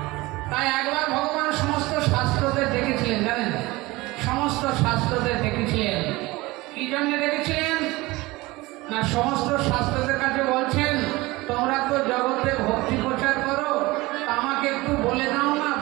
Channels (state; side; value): quieter; left; 21.2 dB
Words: তাই একবার ভগবান সমস্ত শাস্ত্রদের দেখেছিলেন, জানেন সমস্ত শাস্ত্রদের দেখেছিলেন। কি জন্য দেখেছিলেন না, সমস্ত শাস্ত্রদের কাছে বলছেন তোমরা তো জগতে ভক্তি প্রচার করো, আমাকে একটু বলে দাও না